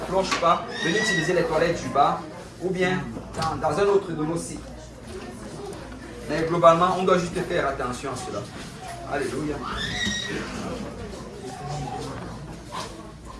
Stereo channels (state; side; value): identical; both; correlation 1.00